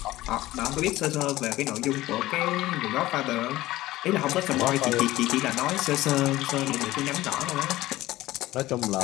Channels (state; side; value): quieter; right; 16.9 dB